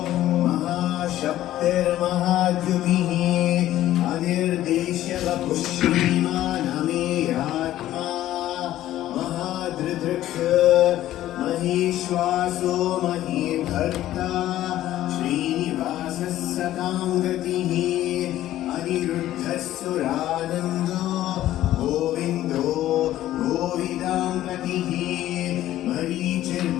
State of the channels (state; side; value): quieter; right; 13.7 dB